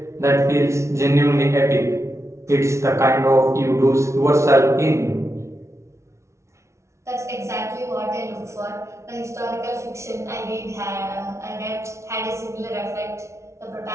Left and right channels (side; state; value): left; late; 0.13 ms